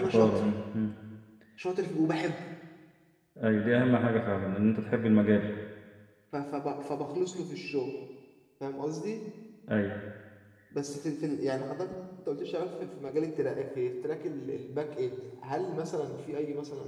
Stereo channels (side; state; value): both; identical; correlation 1.00